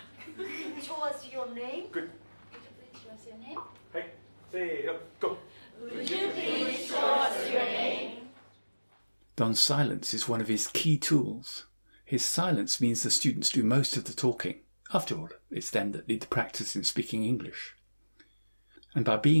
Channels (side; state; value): both; inverted; correlation -1.00